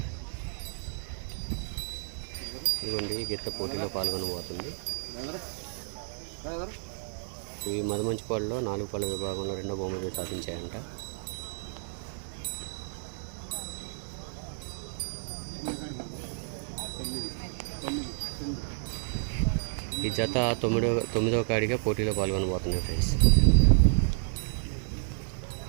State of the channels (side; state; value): left; silent; 57 dB below the other